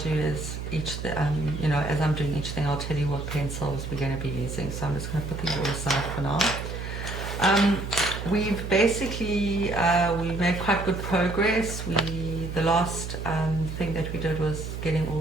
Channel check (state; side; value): noise; right; hum, 7 dB below the sound